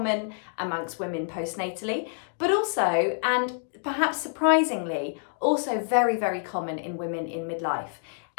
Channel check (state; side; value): silent; right; digital silence